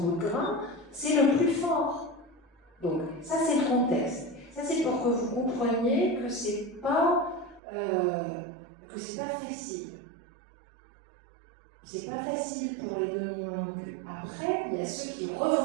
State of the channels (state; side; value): drops out; left; at 7.6 s